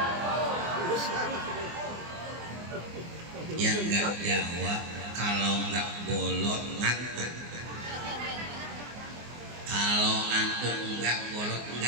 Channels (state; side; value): late; left; 24 ms